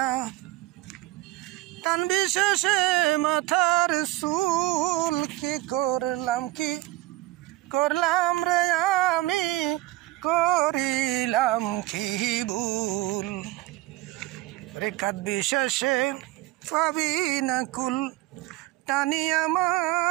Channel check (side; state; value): left; quieter; 18.0 dB